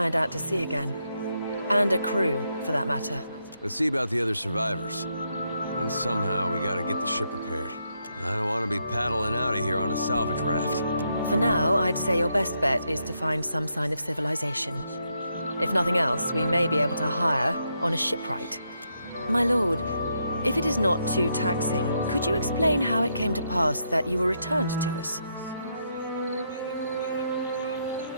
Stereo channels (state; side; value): inverted; both; correlation -0.79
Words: out to sea again. And a crew, for that matter. Let's see about the other survivors. Then somehow we gotta get the ship repaired. I don't want to be paddling out of here on a salvage raft. For now, I'd say your best bet is to find some sign of civilization. If nothing else, we may be able to hire on a shipwright. My lord, if it is not too taxing, could you explain how it came to pass that you were returned to us?